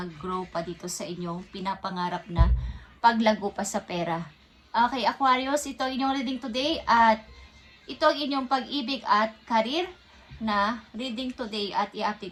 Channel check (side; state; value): both; identical; correlation 1.00